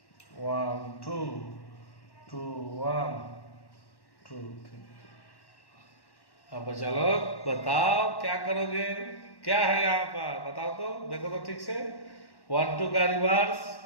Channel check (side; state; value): right; late; 1.1 ms